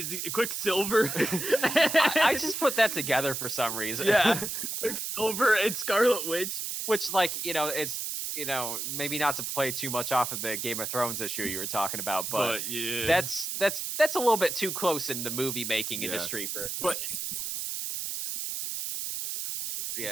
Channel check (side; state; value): right; noise; hiss, 3 dB below the sound